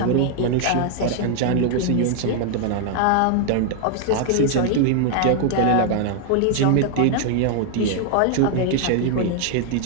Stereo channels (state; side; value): different; both; correlation 0.00